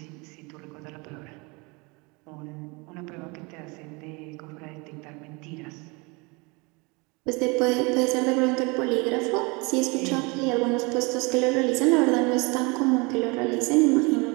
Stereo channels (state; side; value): quieter; left; 28.0 dB